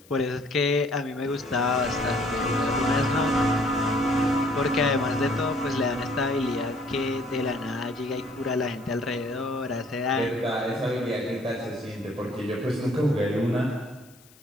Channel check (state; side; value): noise; left; hiss, 27 dB below the sound